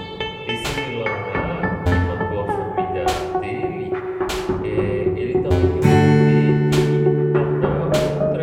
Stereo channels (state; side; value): identical; both; correlation 1.00